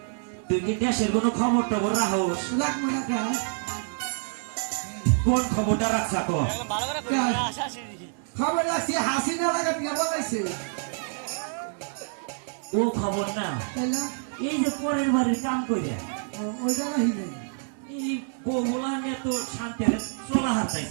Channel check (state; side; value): silent; left; digital silence